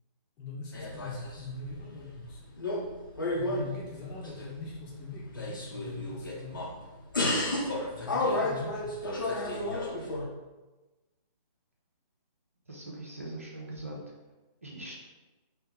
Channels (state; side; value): inverted; both; correlation -0.31